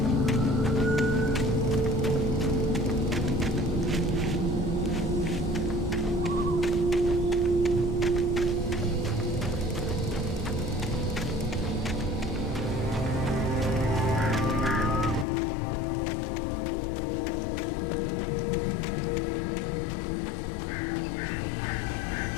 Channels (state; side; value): drops out; right; at 15.2 s